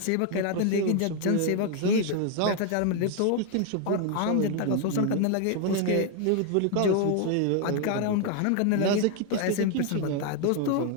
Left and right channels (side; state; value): both; different; correlation 0.01